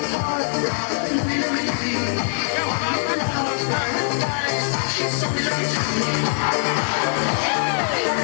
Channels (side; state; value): right; silent; 63 dB below the other